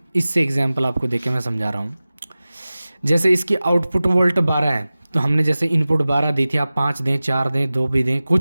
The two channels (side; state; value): both; inverted; correlation -0.97